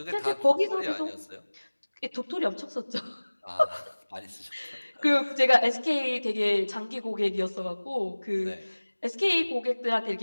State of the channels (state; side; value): inverted; both; correlation -1.00